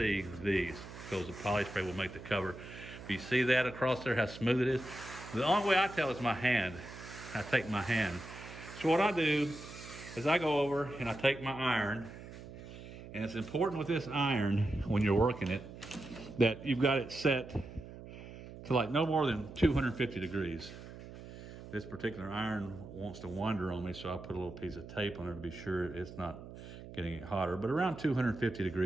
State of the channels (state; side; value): noise; right; hum, 14 dB below the sound